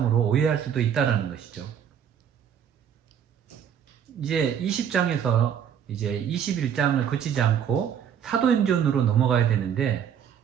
오해할 수도 있다는 것이죠. 이제 20장에서 이제 21장을 거치지 않고 사도행전으로 넘어가야 되는데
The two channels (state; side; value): quieter; left; 8.6 dB